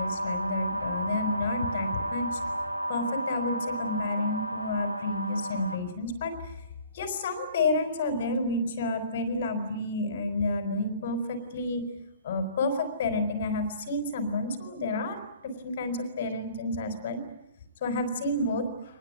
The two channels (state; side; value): inverted; both; correlation -0.55